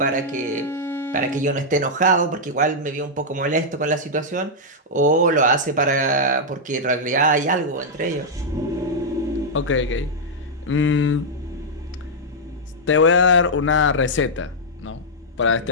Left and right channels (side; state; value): both; normal; correlation -0.06